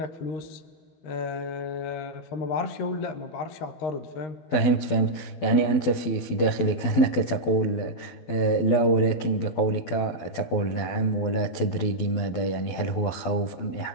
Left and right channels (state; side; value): late; right; 12 ms